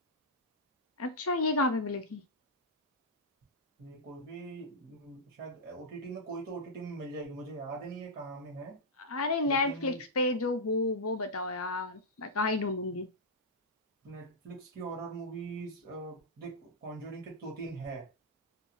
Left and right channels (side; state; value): both; normal; correlation -0.08